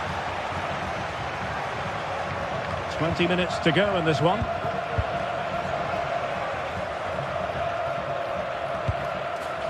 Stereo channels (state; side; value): identical; both; correlation 1.00